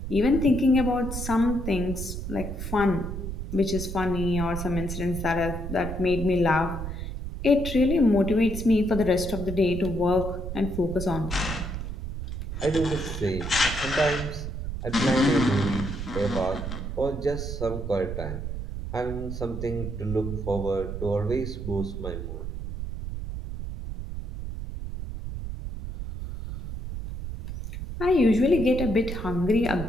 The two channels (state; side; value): noise; right; rumble, 6 dB below the sound